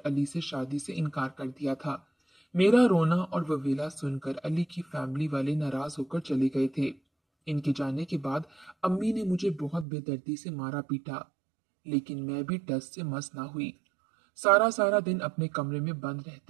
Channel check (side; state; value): left; drops out; at 9.9 s